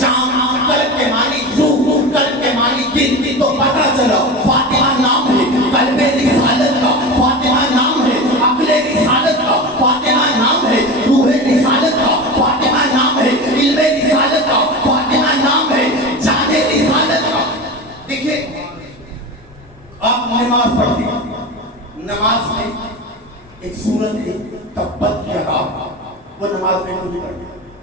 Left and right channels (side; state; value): both; normal; correlation 0.27